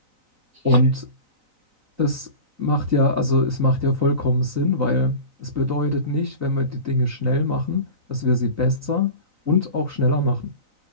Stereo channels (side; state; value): left; late; 3.9 ms